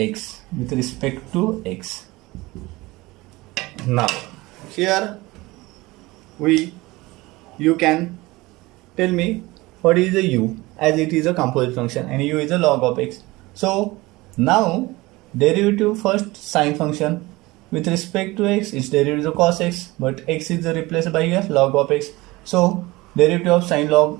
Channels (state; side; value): quieter; left; 21.0 dB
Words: with respect to x. Now here you can tell me what is a u, as it is a composite function and u is a log of x. So now derivative first sine function with respect to x, its derivative is a cos x, but x is replaced by here log of x. So derivative of sine log